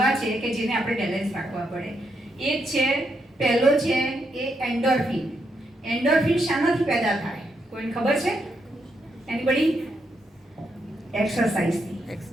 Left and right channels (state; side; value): normal; both; correlation 0.79